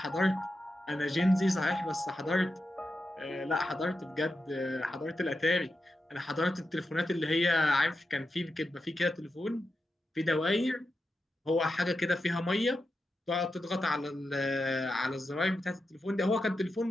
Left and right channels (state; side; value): normal; both; correlation 0.89